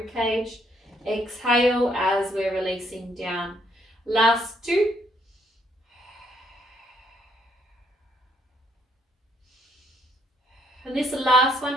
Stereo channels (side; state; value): both; normal; correlation 0.71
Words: cage. Exhale as we're releasing down. Last 2. And this last